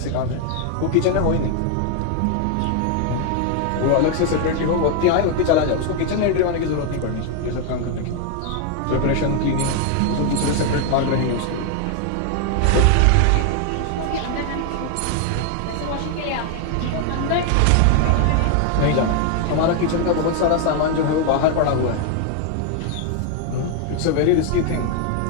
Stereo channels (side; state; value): both; different; correlation 0.01